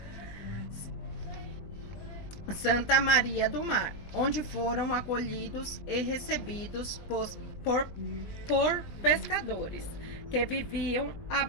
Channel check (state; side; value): late; right; 20 ms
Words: Santa Maria do Mar, onde foram acolhidos e recebidos por pescadores que viviam a